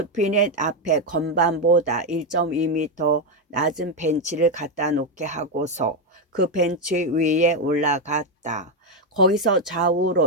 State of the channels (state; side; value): normal; both; correlation 0.06